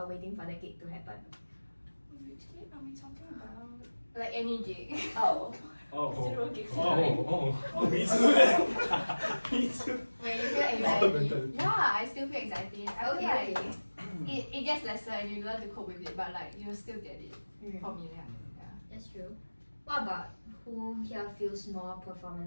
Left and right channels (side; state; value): both; inverted; correlation -1.00